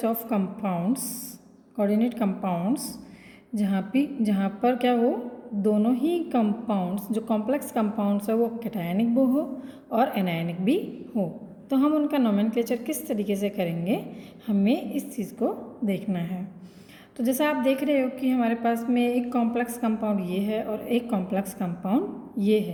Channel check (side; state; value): both; identical; correlation 1.00